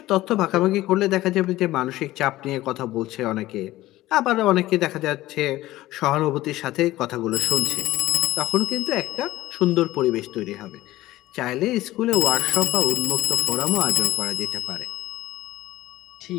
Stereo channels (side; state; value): right; quieter; 16.5 dB